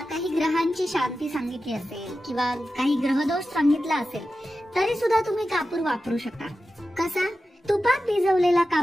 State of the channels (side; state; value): both; normal; correlation 0.93